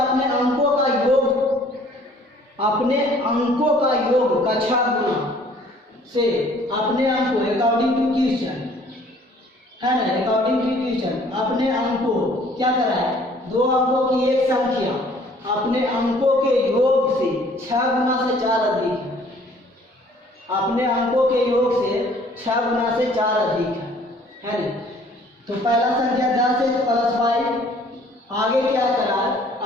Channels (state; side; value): normal; both; correlation 0.56